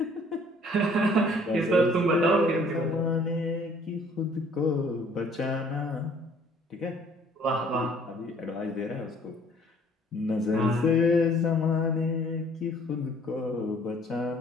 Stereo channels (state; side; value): normal; both; correlation 0.57